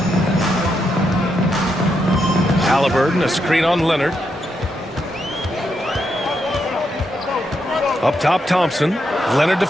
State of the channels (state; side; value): normal; both; correlation 0.81